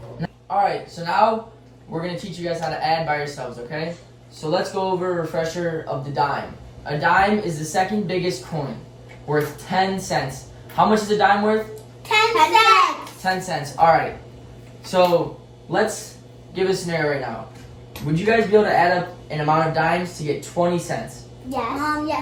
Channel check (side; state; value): both; identical; correlation 1.00